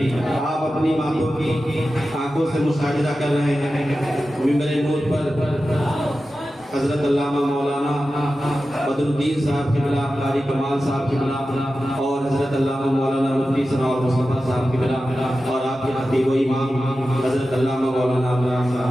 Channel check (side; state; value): both; normal; correlation 0.93